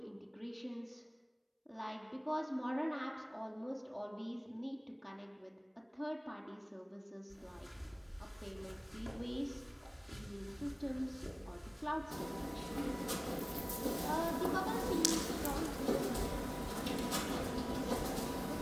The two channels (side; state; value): both; identical; correlation 1.00